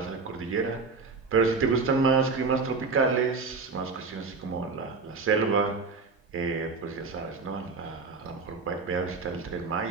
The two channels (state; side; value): quieter; left; 4.4 dB